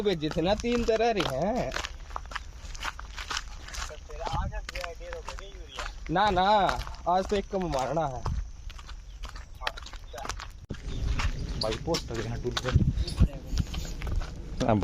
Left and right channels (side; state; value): both; identical; correlation 1.00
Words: भेजे थे ना 3 तो रह रहे हैं ना ना आज तो एक कम मारना है भाई पोस्ट लगे हैं टूल पे